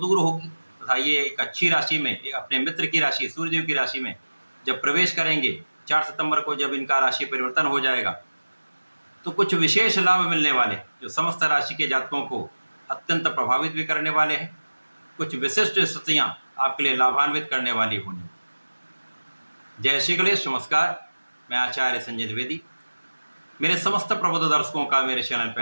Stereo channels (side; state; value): both; inverted; correlation -1.00